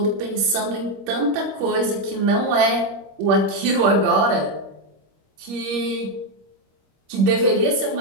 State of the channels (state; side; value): late; left; 25 ms